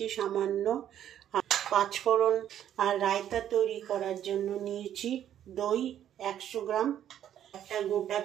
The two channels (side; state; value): left; quieter; 10.6 dB